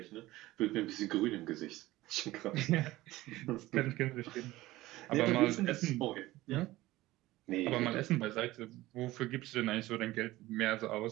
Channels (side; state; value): left; quieter; 17.6 dB